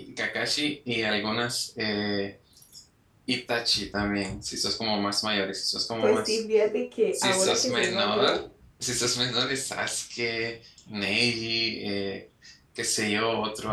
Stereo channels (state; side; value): identical; both; correlation 1.00